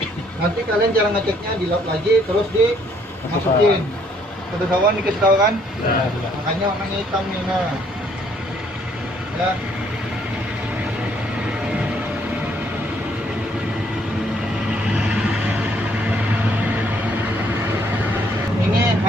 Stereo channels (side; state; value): both; normal; correlation 0.65